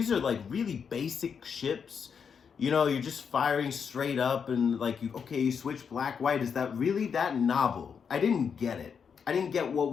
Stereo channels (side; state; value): right; quieter; 6.6 dB